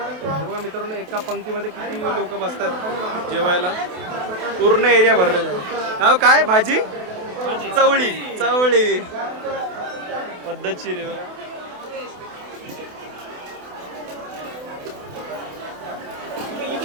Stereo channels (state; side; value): late; left; 28 ms